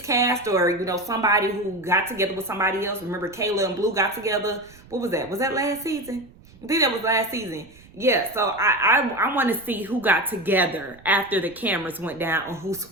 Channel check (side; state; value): right; noise; rumble, 24 dB below the sound